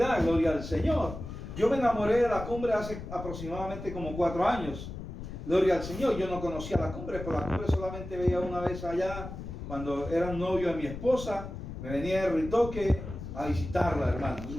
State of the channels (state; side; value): noise; left; rumble, 9 dB below the sound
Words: gloria al Señor. Yo me enamoré de la cumbre hace aproximadamente como 4 años. Gloria al Señor. Yo no conocía la cumbre, pero la cumbre solamente veía una vez allá, cuando era novio de mi esposa. Me venía de Ritoque a visitarla, hermano.